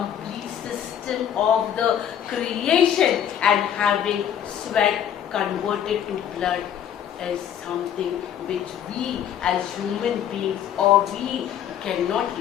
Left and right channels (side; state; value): right; quieter; 9.6 dB